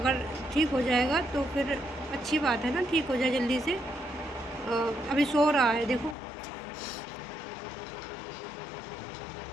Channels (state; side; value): drops out; right; at 6.2 s